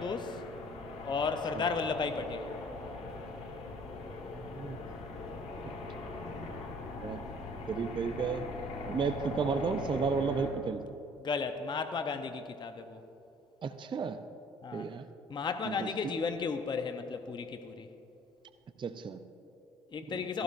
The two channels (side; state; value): both; normal; correlation 0.53